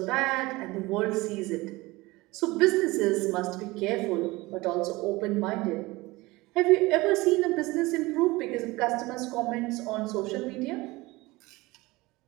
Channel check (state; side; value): quieter; left; 21.3 dB